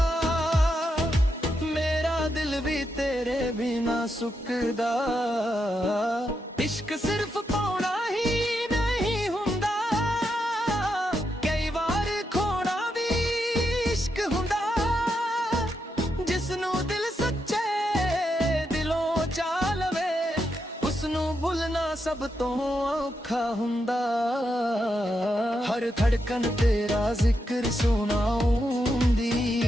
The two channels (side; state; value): both; normal; correlation 0.83